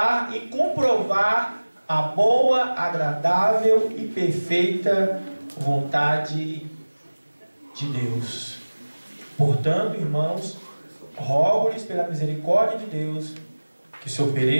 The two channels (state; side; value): inverted; both; correlation -1.00